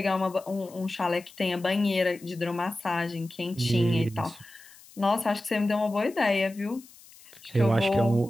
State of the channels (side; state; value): left; noise; hiss, 23 dB below the sound